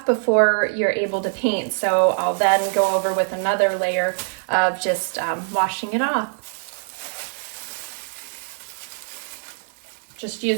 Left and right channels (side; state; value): left; silent; digital silence